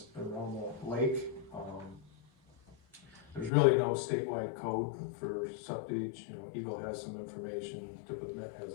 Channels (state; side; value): drops out; right; at 3.5 s